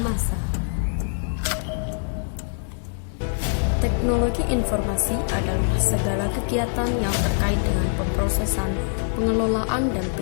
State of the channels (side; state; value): right; silent; digital silence